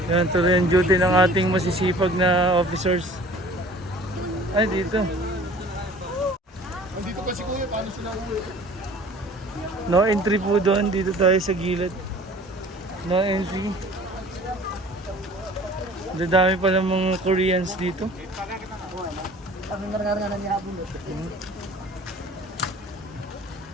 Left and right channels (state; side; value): normal; both; correlation 0.48